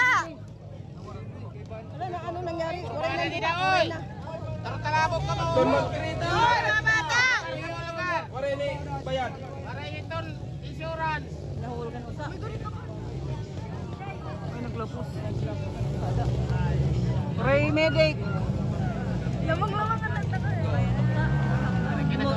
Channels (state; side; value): identical; both; correlation 1.00